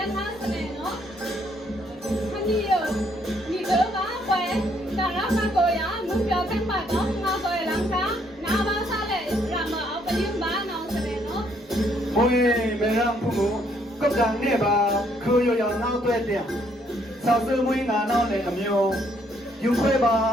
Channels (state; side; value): normal; both; correlation 0.69